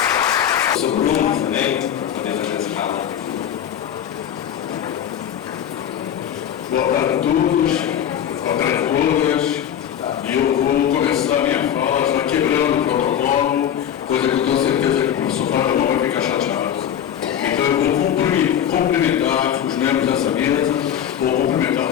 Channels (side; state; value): right; quieter; 9.7 dB